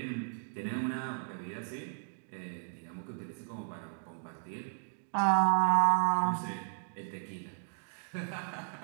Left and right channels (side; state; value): left; silent; digital silence